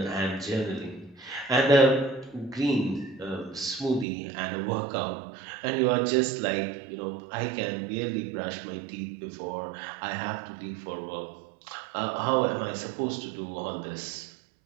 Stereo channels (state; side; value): drops out; left; at 4.0 s